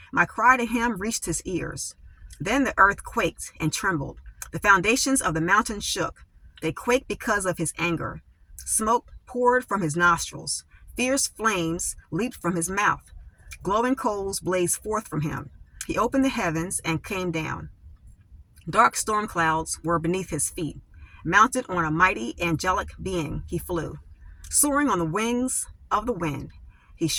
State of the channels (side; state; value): both; identical; correlation 1.00